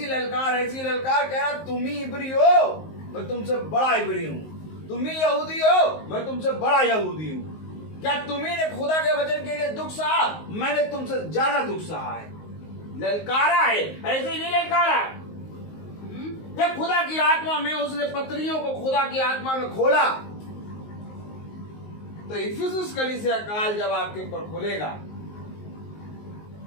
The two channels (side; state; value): right; late; 19 ms